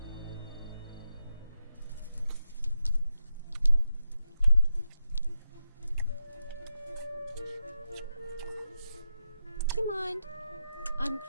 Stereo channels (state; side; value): inverted; both; correlation -0.87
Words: Do you mind? I'm